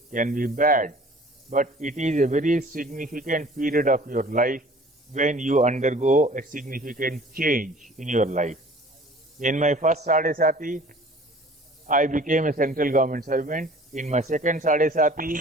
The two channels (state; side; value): normal; both; correlation 0.49